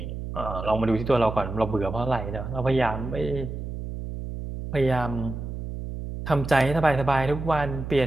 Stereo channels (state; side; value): noise; right; hum, 7 dB below the sound